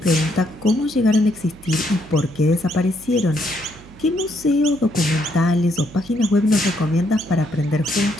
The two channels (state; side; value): noise; right; hum, 21 dB below the sound